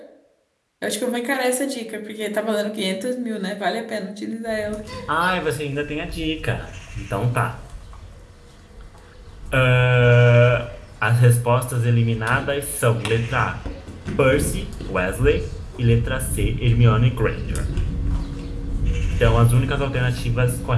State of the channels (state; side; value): identical; both; correlation 1.00